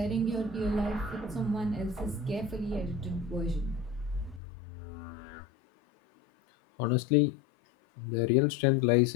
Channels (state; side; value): drops out; right; at 4.4 s